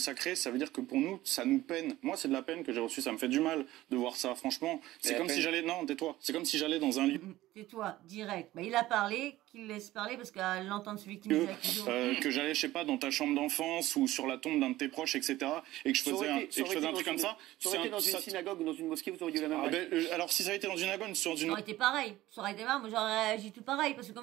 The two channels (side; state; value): left; quieter; 16.2 dB